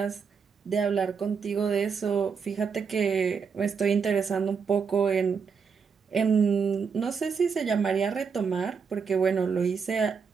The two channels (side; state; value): left; quieter; 5.9 dB